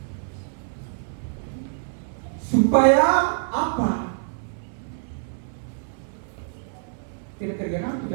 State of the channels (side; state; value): left; silent; 61 dB below the other